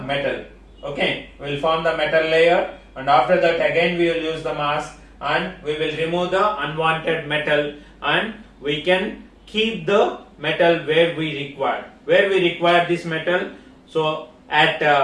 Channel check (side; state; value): both; identical; correlation 1.00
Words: metal. Okay, we will form the metal layer, and after that again we will use the mask, and we will remove the unwanted metal, and we can keep the metal where we require this metal. So at